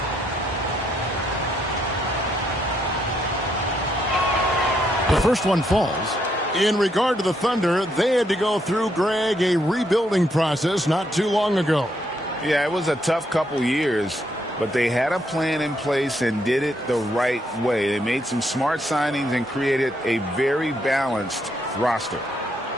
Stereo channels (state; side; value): normal; both; correlation 0.75